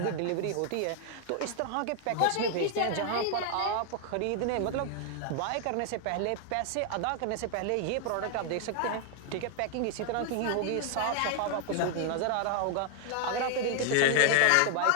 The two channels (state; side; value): different; both; correlation 0.00